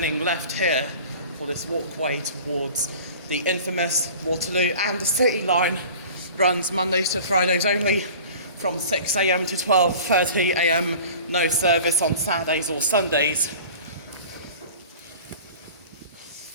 left here for this walkway towards the infamous Waterloo and the City Line. Runs Mondays to Fridays only, from 6 AM to 12:30 AM, no service on Saturdays or Sundays.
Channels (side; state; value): both; inverted; correlation -0.42